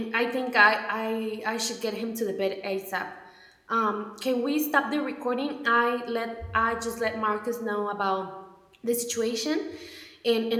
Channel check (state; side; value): identical; both; correlation 1.00